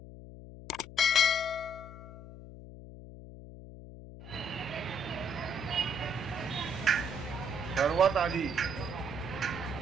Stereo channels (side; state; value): left; noise; hum, 14 dB below the sound